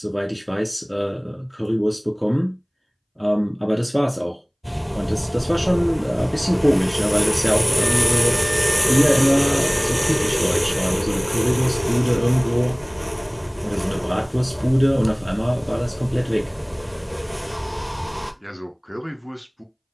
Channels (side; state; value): both; identical; correlation 1.00